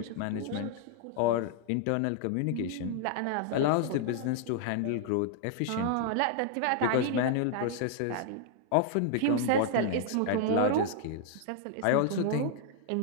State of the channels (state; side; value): different; both; correlation 0.00